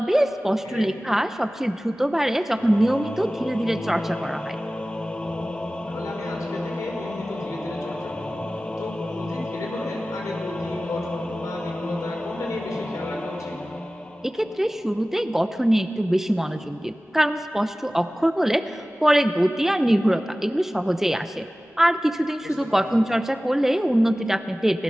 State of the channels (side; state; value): both; normal; correlation 0.97